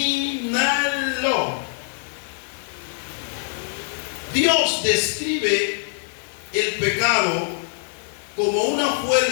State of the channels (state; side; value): silent; right; 63 dB below the other